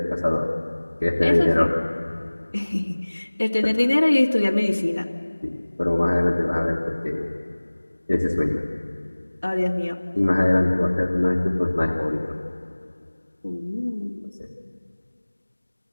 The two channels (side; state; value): both; inverted; correlation -1.00